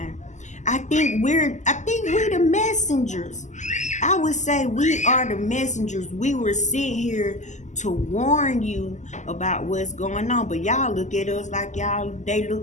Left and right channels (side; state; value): right; late; 0.34 ms